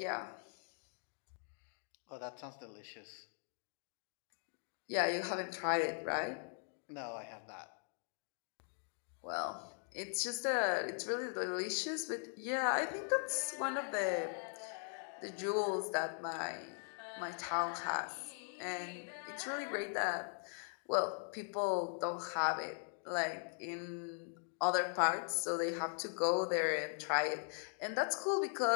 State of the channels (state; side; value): silent; right; 51 dB below the other